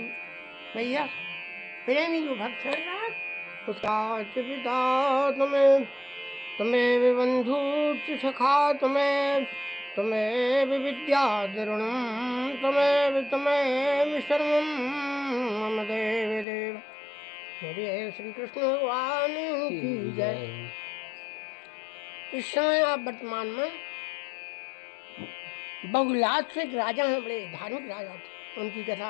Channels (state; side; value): drops out; right; at 16.4 s